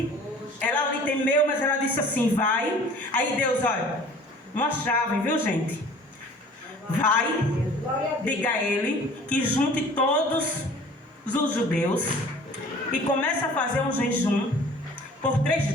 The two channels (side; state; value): both; normal; correlation 0.48